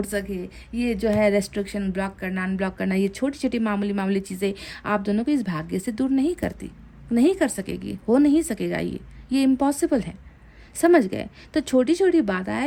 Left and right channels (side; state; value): both; identical; correlation 1.00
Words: सके, ये जो है रेस्ट्रिक्शन ब्लॉक करना, अनब्लॉक करना, ये छोटी छोटी मामूली चीज़ें आप दोनों को इस भाग्य से दूर नहीं करती, नहीं कर सकेगी, हो नहीं सकेगा, ये इम्पॉसिबल है। समझ गए? तो छोटी छोटी